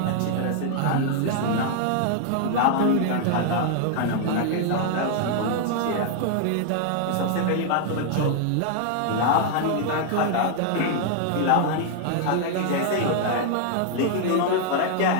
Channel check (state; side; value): different; both; correlation 0.00